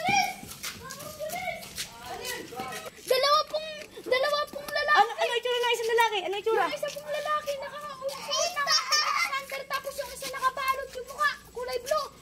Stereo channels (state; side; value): identical; both; correlation 1.00